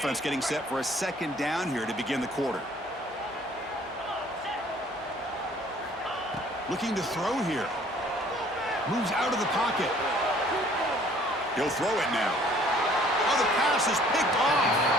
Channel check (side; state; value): both; normal; correlation 0.56